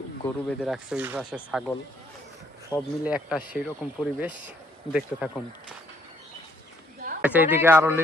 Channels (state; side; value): normal; both; correlation 0.68